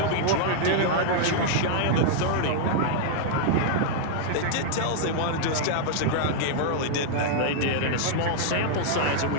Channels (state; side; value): different; both; correlation -0.01